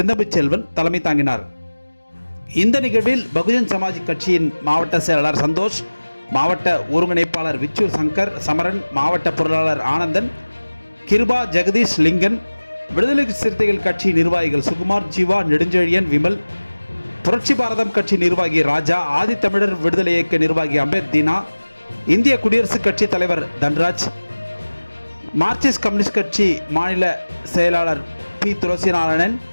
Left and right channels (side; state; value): both; inverted; correlation -1.00